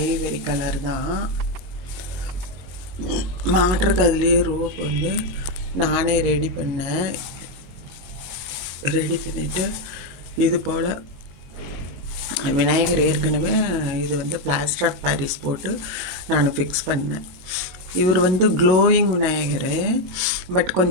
கலர் தான். மாட்டுறக்கு அதுலேயே ரோப் வந்து நானே ரெடி பண்ணிவிட்டு இது போல் விநாயகர் ஏற்கனவே இது வந்து பிளாஸ்டர் ஆஃப் பாரிஸ் போட்டு நான் ஃபிக்ஸ் பண்ணேன். இவர் வந்து க்ளோயிங் விநாயகர், பட்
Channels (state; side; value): late; left; 22 ms